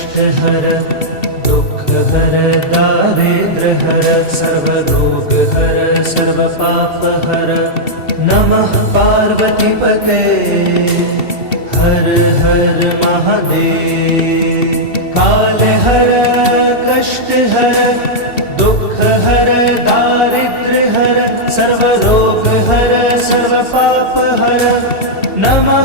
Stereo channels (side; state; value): right; late; 2.7 ms